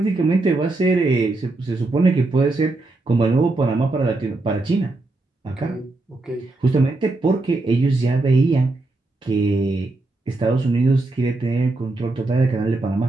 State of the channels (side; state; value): left; quieter; 3.1 dB